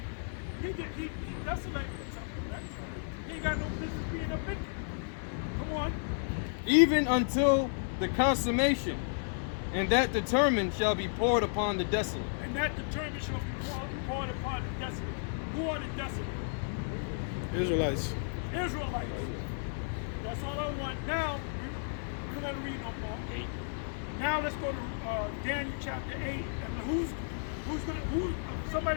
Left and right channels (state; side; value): silent; right; 56 dB below the other